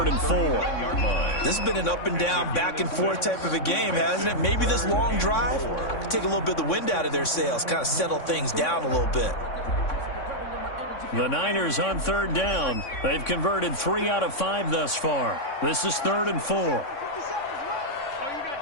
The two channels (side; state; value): right; late; 3.6 ms